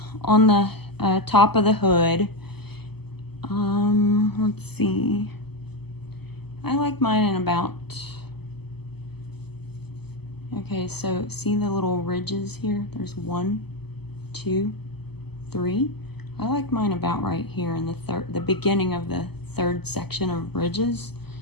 on the top of the hood, let's see. I like mine in about, okay, so see the little ridges here? There's 1, 2, 3. I like mine about right here in the beginning of the 3rd section of ridges,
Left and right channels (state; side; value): late; right; 0.97 ms